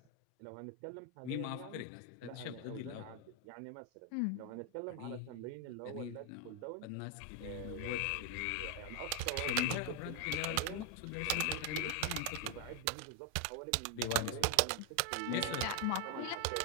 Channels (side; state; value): both; different; correlation 0.01